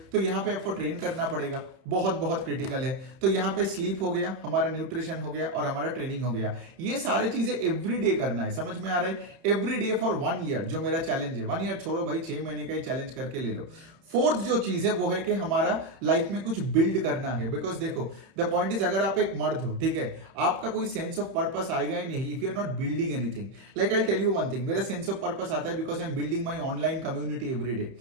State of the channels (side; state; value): left; late; 30 ms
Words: तो यहाँ पे आपको ट्रेन करना पड़ेगा, बहुत बहुत क्रिटिकल है। तो यहाँ पे स्लीप हो गया, हमारा न्यूट्रिशन हो गया और हमारा ट्रेनिंग हो गया। ये सारी चीजें एवरी डे करना है। समझ में आ रहा है? एवरी डे फॉर 1 ईयर जो मेरा चैलेंज है। 1 ईयर छोड़ो भाई, 6 महीने का ही चैलेंज करके ले लो। फोर्थ जो चीज है वो है कि हमारा लाइफ में कुछ बिल्ड करना है। बिकॉज देखो, द पॉइंट इज, अगर आप एक मर्द हो, ठीक है, आपका कोई सेंस ऑफ पर्पस आएगा ही नहीं if you are not building anything. Like I tell you one thing, मेरा सेंस ऑफ पर्पस आता है because I am building my online community every day,